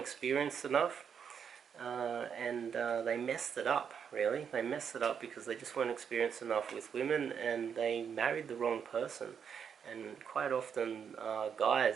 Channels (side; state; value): left; quieter; 7.3 dB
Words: enough, and they messed it up, really. They messed it up because they just weren't experienced enough with women, and they married the wrong person. And quite often,